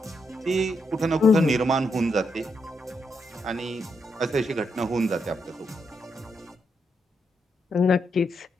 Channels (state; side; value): normal; both; correlation 0.80